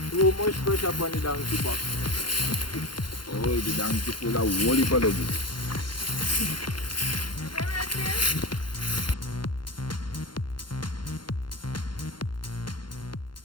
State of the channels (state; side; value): late; right; 0.72 ms